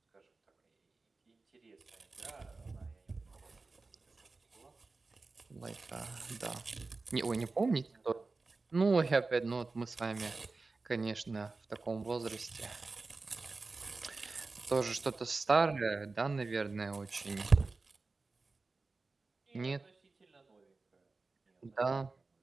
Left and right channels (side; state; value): left; quieter; 3.8 dB